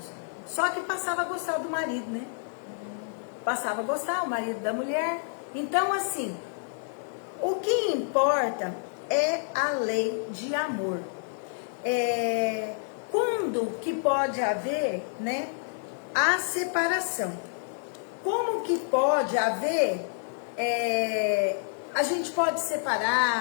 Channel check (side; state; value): right; silent; 59 dB below the other